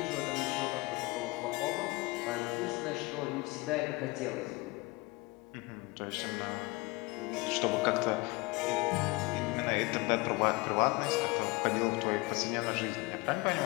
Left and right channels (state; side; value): quieter; right; 24.0 dB